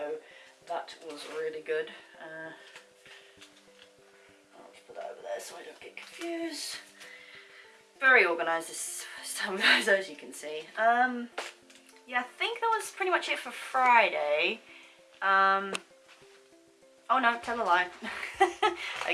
that was really good. I'll just put that over there so I don't get confused. Very organised this time, guys, as you can see. Yeah, I think that was pretty much it for Friday. Oh no, tell a lie.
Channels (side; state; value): both; identical; correlation 1.00